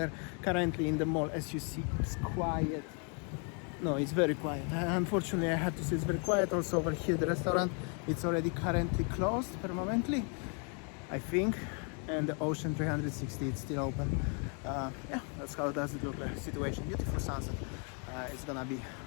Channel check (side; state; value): right; quieter; 38.6 dB